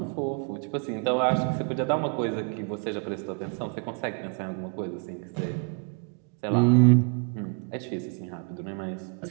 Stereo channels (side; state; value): left; quieter; 35.7 dB